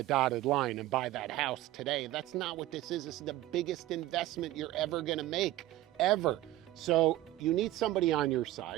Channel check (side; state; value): left; quieter; 15.3 dB